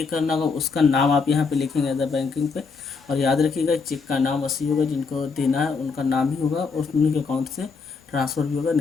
करना होगा उसका नाम आप यहाँ पे लिखेंगे अदर बैंकिंग पे। और याद रखिएगा चेक का नाम वैसे होगा, जिनको देना है उनका नाम ही होगा और उन्हीं के अकाउंट से ट्रांसफ़र भी होगा,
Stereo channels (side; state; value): right; quieter; 4.8 dB